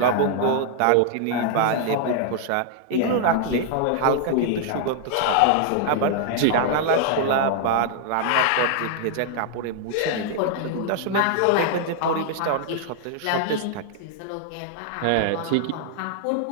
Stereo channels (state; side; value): different; both; correlation -0.01